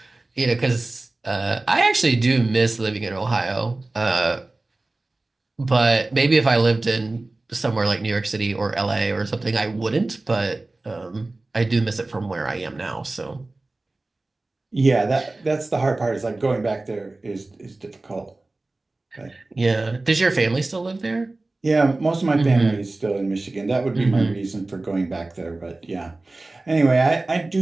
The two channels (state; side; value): quieter; left; 3.1 dB